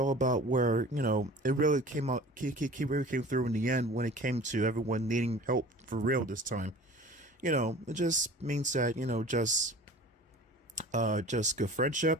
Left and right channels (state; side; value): normal; both; correlation 0.42